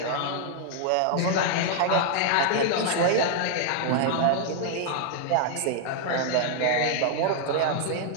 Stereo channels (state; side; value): different; both; correlation 0.00